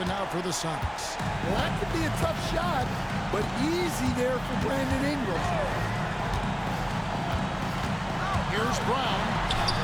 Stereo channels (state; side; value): identical; both; correlation 1.00